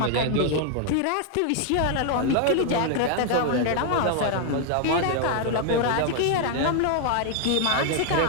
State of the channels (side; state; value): both; different; correlation 0.00